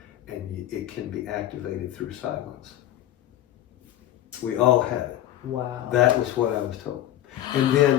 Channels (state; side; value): quieter; right; 12.9 dB